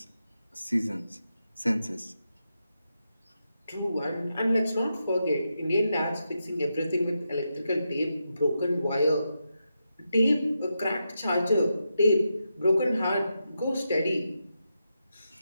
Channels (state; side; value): inverted; both; correlation -0.86